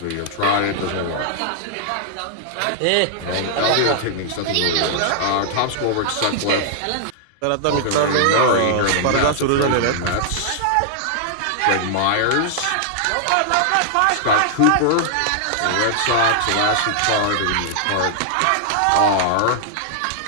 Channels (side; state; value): both; different; correlation -0.01